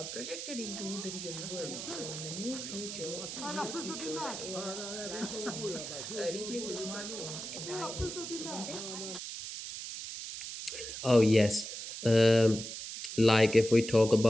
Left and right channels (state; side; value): noise; right; hiss, 8 dB below the sound